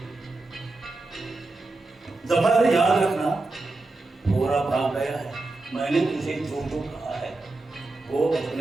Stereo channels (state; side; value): quieter; left; 3.2 dB